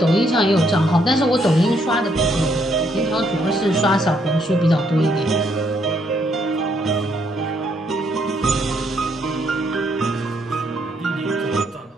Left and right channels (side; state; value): both; normal; correlation 0.72